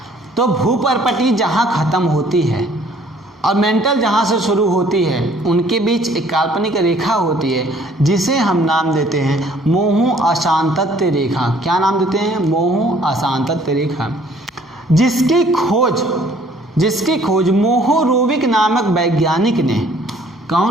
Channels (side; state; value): both; normal; correlation 0.58